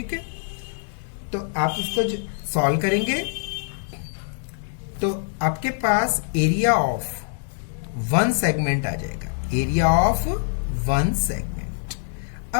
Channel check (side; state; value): right; silent; 62 dB below the other